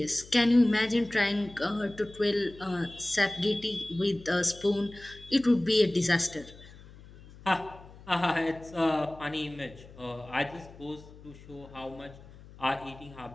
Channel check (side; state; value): left; noise; hum, 20 dB below the sound